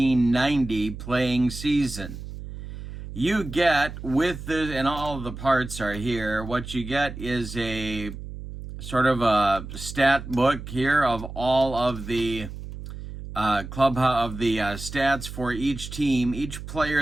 playing season. You get, with this, and all of the parts are here, what you get is a sort of a stat book here of all of the stats for each team, each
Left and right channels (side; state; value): right; noise; hum, 10 dB below the sound